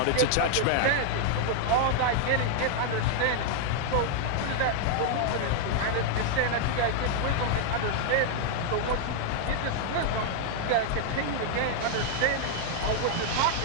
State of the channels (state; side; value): different; both; correlation 0.00